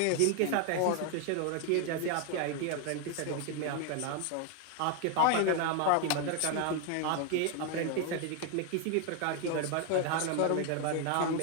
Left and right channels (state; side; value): different; both; correlation 0.00